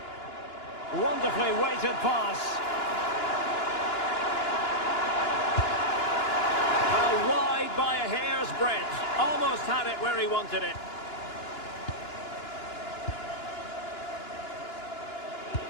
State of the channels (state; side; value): late; right; 2.9 ms